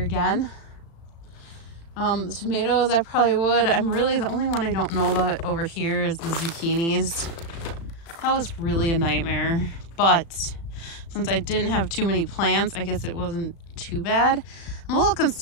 again. The tomatoes, I probably would. The only one I don't know about over here is the zucchinis. That was really a nightmare. But since I didn't have too many plants, I guess it wasn't too bad. I'm a little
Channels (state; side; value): late; right; 36 ms